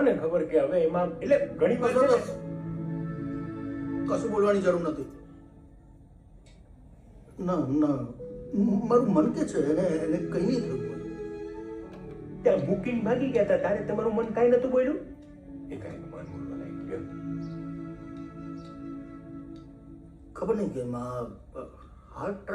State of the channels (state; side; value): identical; both; correlation 1.00